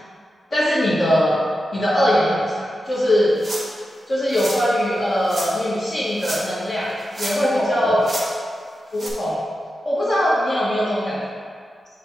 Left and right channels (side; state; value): both; normal; correlation 0.90